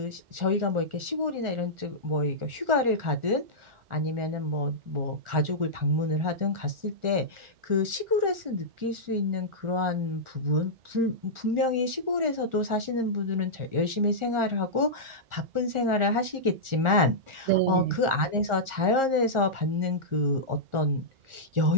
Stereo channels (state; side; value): late; left; 1.4 ms